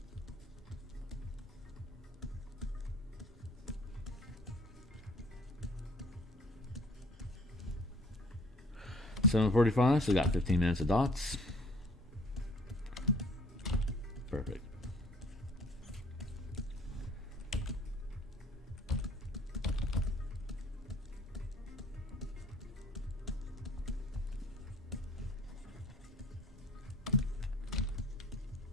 $7:45, so we got 15 minutes of dots. Perfect.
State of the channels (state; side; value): normal; both; correlation 0.55